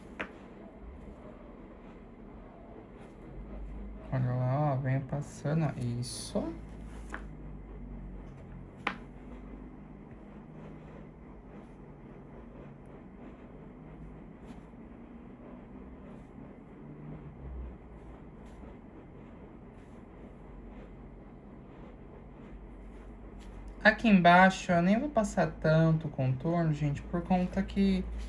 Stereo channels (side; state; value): both; identical; correlation 1.00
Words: Olha lá, ó, venha passando, ó, isso. Aqui embaixo eu nem vou passar tanto contorno, gente, por conta que